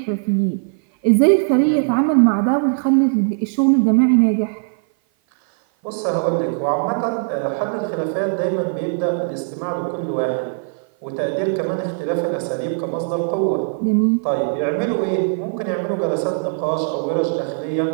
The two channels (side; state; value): left; silent; 56 dB below the other